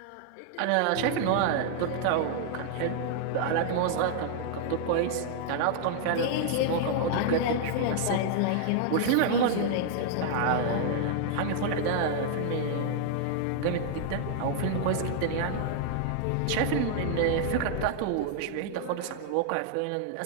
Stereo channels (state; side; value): different; both; correlation 0.00